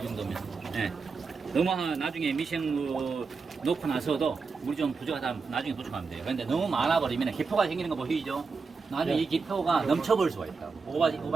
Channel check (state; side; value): quieter; left; 4.8 dB